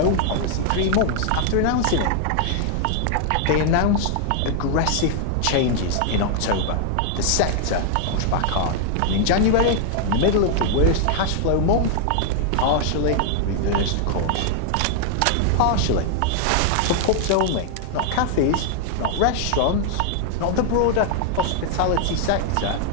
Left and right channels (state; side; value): different; both; correlation 0.00